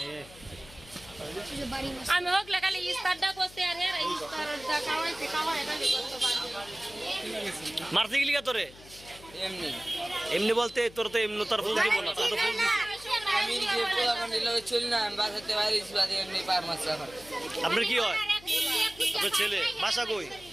আমি হোকলে খালি ইস্তারটা করতে আর ইস্তারটা খাওয়াইতে খাওয়াই খালি মারতে গেলি কা তোরে এমনি এমনি বলতে তোর তো এমনি তার ফুল দিব না তোর তো ফুল দিছে আমি যে পোলাপান দিলে চলি না আমি বাসাতে বাইরে বাদে এমনি পার মাছ আমার আপনার কি হয় আপনার ছেলে বাসা কই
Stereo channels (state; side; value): noise; left; hum, 20 dB below the sound